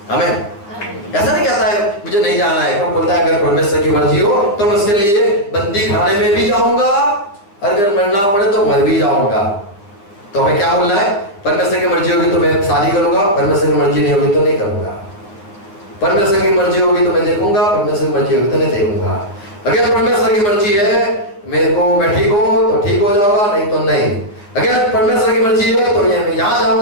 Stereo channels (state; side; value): late; right; 9.8 ms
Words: हमें ऐसा नहीं कहता है मुझे नहीं जाना है, वो बोलता है अगर परमेश्वर की मर्जी हो तो मैं उसके लिए बंदी खाने में भी जाऊंगा, अगर मरना पड़े तो मर भी जाऊंगा। तो हमें क्या बोलना है? परमेश्वर की मर्जी होगी तो मैं शादी करूंगा, परमेश्वर की मर्जी नहीं होगी तो नहीं करूंगा। परमेश्वर की मर्जी होगी तो मैं देखूंगा, परमेश्वर की मर्जी होगी तो नहीं देखूंगा। अगर परमेश्वर की मर्जी है मेरे को मैं ठीक हो तो ठीक हो जाऊंगा, नहीं तो नहीं। अगर परमेश्वर की मर्जी है तो मैं यहाँ